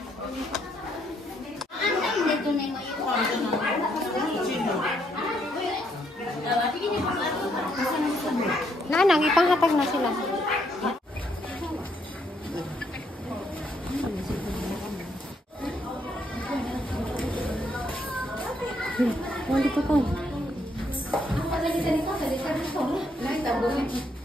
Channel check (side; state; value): both; normal; correlation 0.73